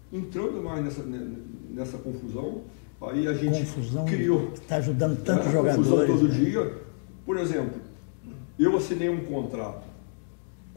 entrando mais nessa confusão. Aí a gente criou. Está ajudando tanto. Era confusão todo dia. Por exemplo, eu assinei um contrato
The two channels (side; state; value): right; silent; digital silence